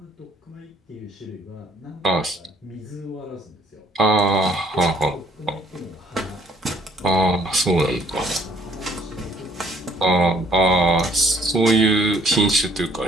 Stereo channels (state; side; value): normal; both; correlation 0.62